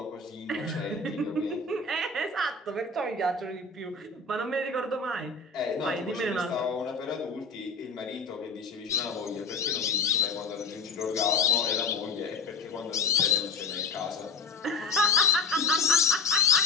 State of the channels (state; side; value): quieter; right; 4.1 dB